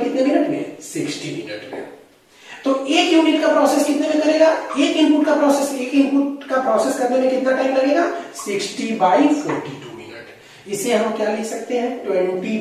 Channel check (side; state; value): both; identical; correlation 1.00